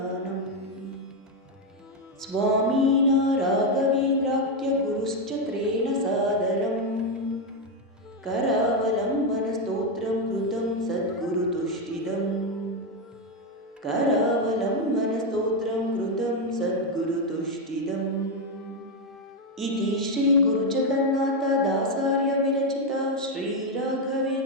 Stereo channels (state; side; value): normal; both; correlation 0.05